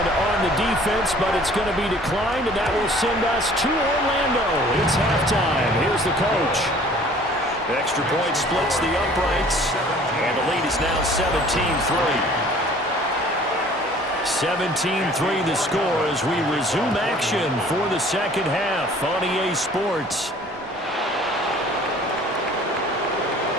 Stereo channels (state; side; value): normal; both; correlation 0.52